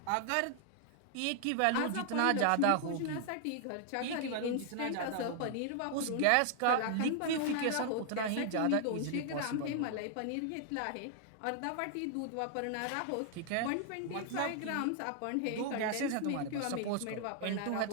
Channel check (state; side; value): different; both; correlation 0.00